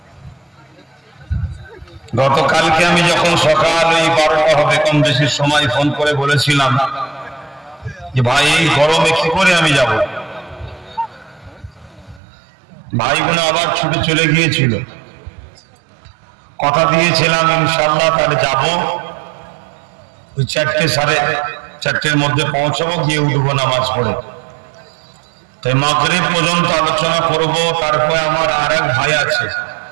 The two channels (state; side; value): drops out; left; at 12.2 s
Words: গতকালকে আমি যখন সকাল ওই 12টা হবে কম বেশি সময় ফোন করে বলেছিলাম যে ভাই এই গরমে কি করে আমি যাব, ভাইগুলো আবার ছুটে চলে গিয়েছিল। কথা দিয়েছিলাম ইনশাআল্লাহ তাহলে যাব, ওই 4টে সাড়ে 4টের মধ্যে পৌঁছাবো, গিয়ে উঠবো নামাজ পড়ে। তাই মাগরিব পর্যন্ত আলোচনা করব। তারপরে আমার আর এক ভাই আছে,